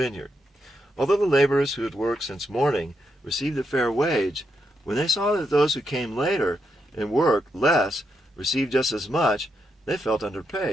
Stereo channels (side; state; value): both; normal; correlation 0.82